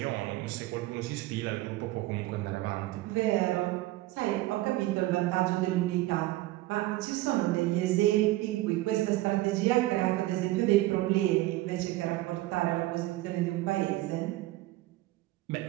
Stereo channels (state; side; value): quieter; left; 17.5 dB